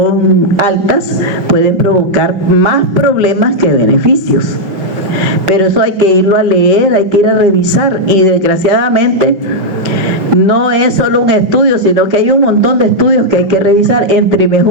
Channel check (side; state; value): left; late; 5.7 ms